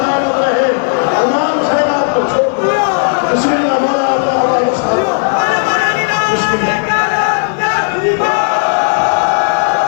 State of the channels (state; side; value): silent; right; 72 dB below the other